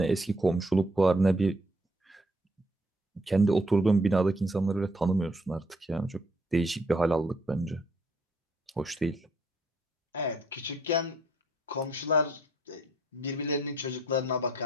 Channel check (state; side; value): normal; both; correlation 0.67